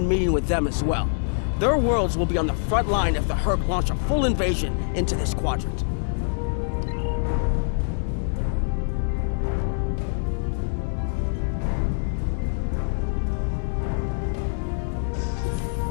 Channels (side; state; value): right; silent; digital silence